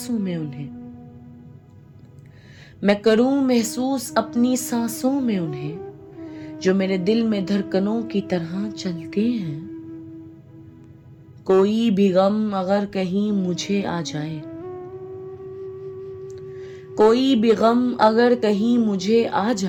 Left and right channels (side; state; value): both; identical; correlation 1.00